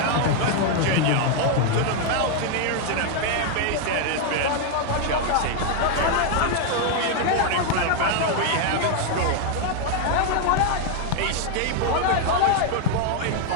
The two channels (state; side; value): different; both; correlation 0.00